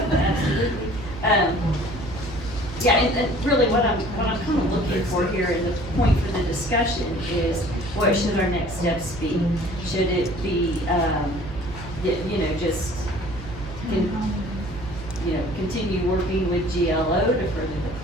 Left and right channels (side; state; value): right; noise; hum, 12 dB below the sound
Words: Absolutely. Yeah, and really what I'm kind of looking for here, and the point for the discussion is, what should our next steps be? Should it be, just, continue working with GLO to further the